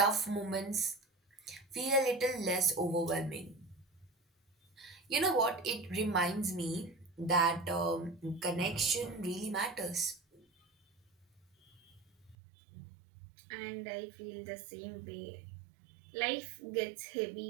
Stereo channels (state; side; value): drops out; left; at 12.4 s